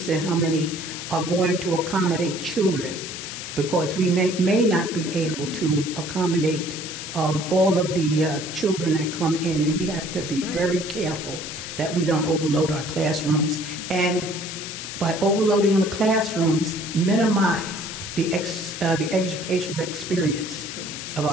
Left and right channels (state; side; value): noise; left; hiss, 8 dB below the sound